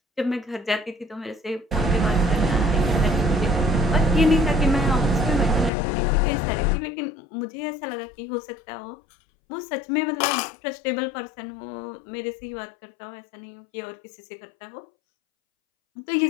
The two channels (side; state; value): right; drops out; at 5.7 s